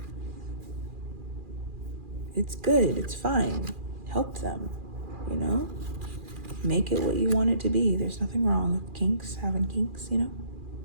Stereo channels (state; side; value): late; left; 2.4 ms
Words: It's good. It's fine. Help them, Make it what you want it to be. There's nothing wrong with having kinks,